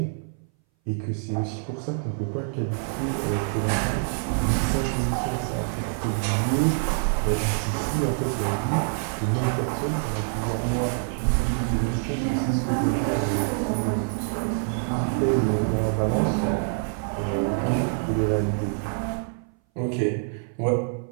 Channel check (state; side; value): silent; left; 59 dB below the other